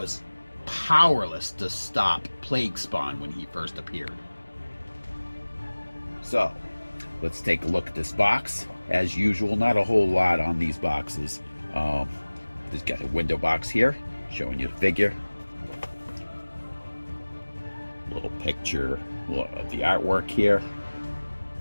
powerless to stop Plague Spawn when he first appeared. So, let's take a look at this box. As usual, not a whole lot on these boxes. Just got a window box here showing you the figure. Little picture of the artwork here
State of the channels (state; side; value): inverted; both; correlation -1.00